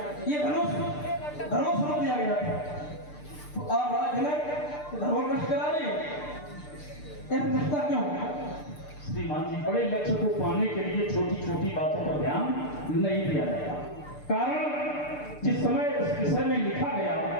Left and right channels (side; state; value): right; late; 6.7 ms